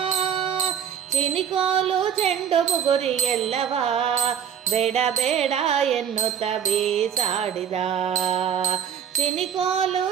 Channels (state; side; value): quieter; left; 8.5 dB